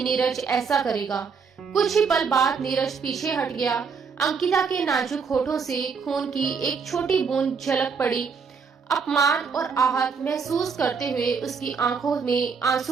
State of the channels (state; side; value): quieter; left; 5.7 dB